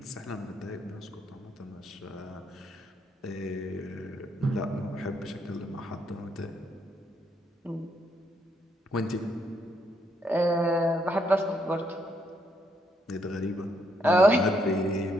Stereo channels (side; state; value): both; normal; correlation 0.74